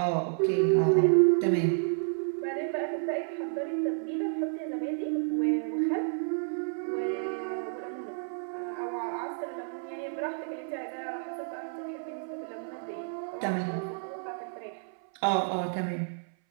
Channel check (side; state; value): left; silent; 57 dB below the other